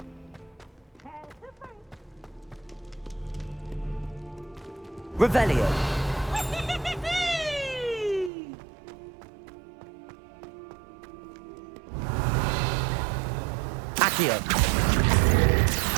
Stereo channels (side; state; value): left; drops out; at 8.3 s